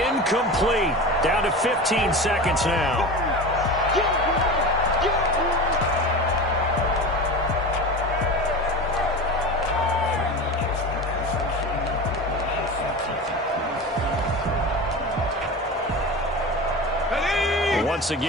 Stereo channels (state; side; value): normal; both; correlation 0.29